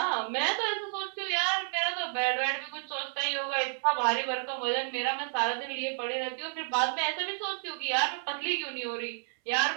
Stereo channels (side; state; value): left; silent; 57 dB below the other